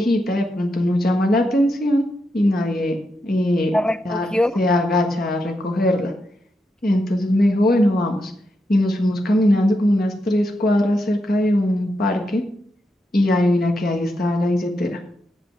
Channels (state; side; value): normal; both; correlation 0.84